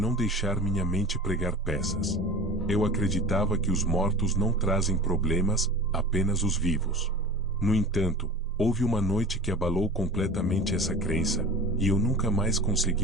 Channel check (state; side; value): normal; both; correlation 0.37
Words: deixar minha mente pregar peças. Eu acreditava que os mortos não trazem problemas, apenas os vivos. No entanto, houve uma noite que abalou completamente essa crença, e eu nunca mais